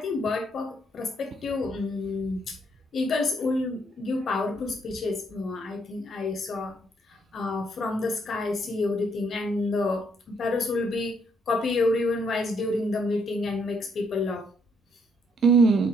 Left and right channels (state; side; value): normal; both; correlation 0.71